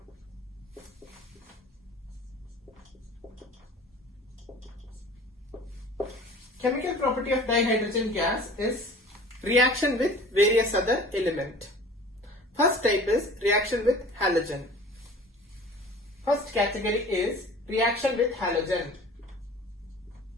Chemical property of dihydrogen gas is reaction with various other element. First type is reaction with halogen. First category is reaction with halogen.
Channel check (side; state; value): both; normal; correlation 0.44